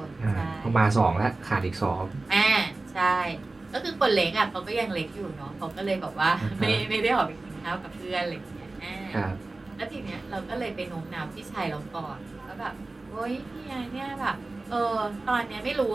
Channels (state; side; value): quieter; left; 3.2 dB